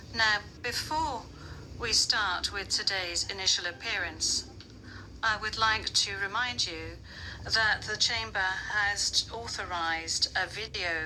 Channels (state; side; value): identical; both; correlation 1.00